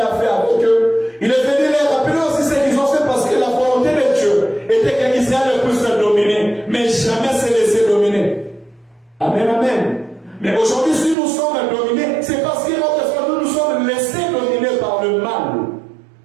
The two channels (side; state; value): left; drops out; at 11.2 s